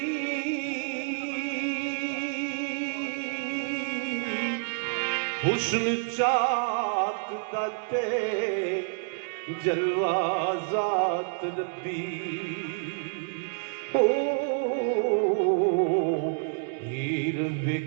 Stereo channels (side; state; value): left; silent; digital silence